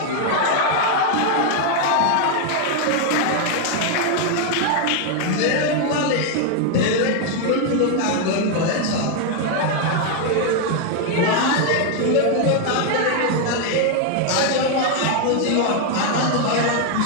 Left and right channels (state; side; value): different; both; correlation 0.01